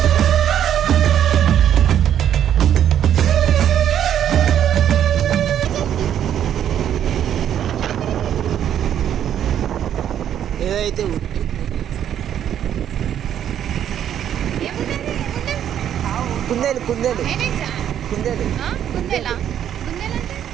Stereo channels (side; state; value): left; quieter; 10.0 dB